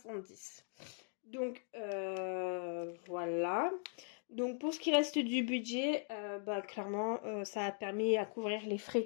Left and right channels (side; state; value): right; silent; 51 dB below the other